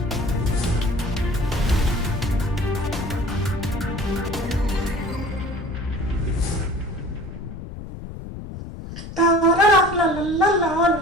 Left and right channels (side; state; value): left; noise; rumble, 11 dB below the sound